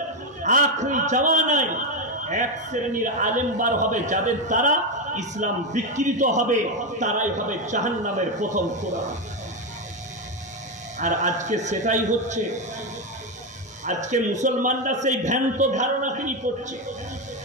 আখরি জামানায় এক শ্রেণীর আলেম বার হবে যাদের দ্বারা ইসলাম বিকৃত হবে, তারাই হবে জাহান্নামের প্রথম কোরআন। আর আজকে সেটাই হচ্ছে। আজকে মুসলমানরা সেই ভ্রান্ত ধারণা তিনি করছে।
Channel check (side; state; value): both; normal; correlation 0.08